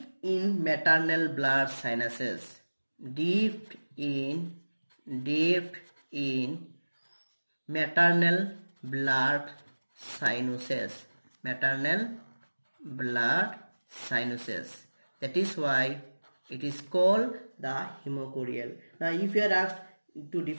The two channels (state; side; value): inverted; both; correlation -1.00